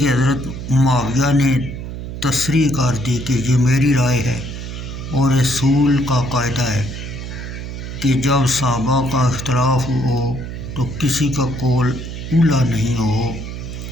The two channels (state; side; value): noise; right; hum, 8 dB below the sound